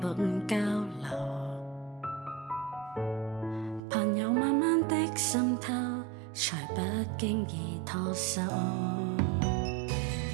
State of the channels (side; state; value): left; drops out; at 3.8 s